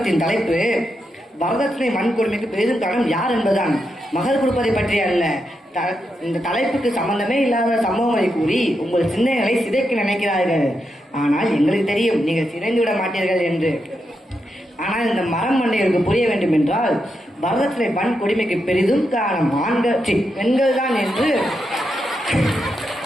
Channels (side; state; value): both; normal; correlation 0.84